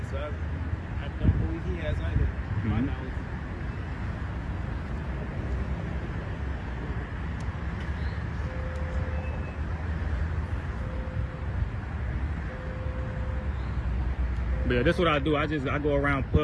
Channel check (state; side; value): identical; both; correlation 1.00